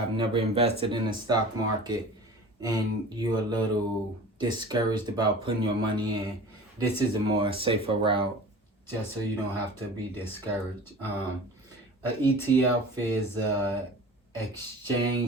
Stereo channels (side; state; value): both; normal; correlation 0.40